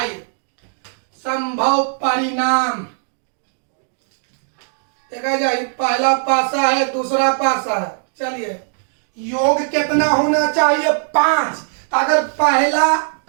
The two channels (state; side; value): silent; left; digital silence